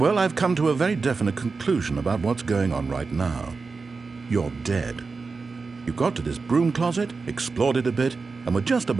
I've come to a very definite conclusion about what's going on right now. You're dead. You got to this broom closet, explored it a bit, and were just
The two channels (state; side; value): quieter; left; 4.4 dB